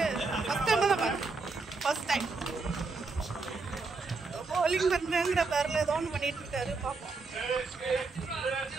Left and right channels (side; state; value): left; quieter; 4.0 dB